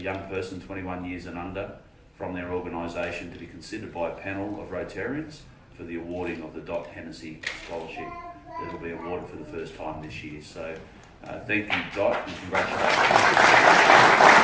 person 21 years and under from their organisation to be considered by a panel of Rotarians for the awarding of the Dot Hennessy Scholarship that will be awarded for the first time this year. So thank you, Dot, and congratulations.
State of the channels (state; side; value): identical; both; correlation 1.00